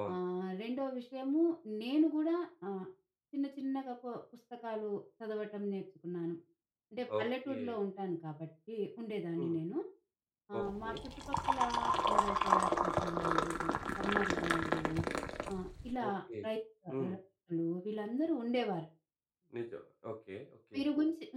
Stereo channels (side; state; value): both; identical; correlation 1.00